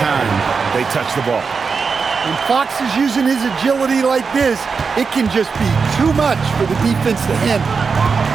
they touch the ball. When Fox is using his agility like this, it can just be too much for the defense to handle.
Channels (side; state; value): left; quieter; 5.2 dB